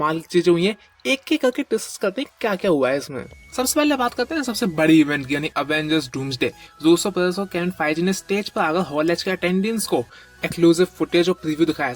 की चीजें हुई हैं। एक एक करके डिस्कस करते हैं क्या क्या हुआ है इसमें। सबसे पहले बात करते हैं सबसे बड़ी इवेंट की, यानी अवेंजर्स डूम्सडे। रूसो ब्रदर्स और केविन फेइजी ने स्टेज पर आकर हॉल एच के अटेंडेंट्स को एक्सक्लूसिव फुटेज और प्रीव्यू दिखाया।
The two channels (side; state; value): both; identical; correlation 1.00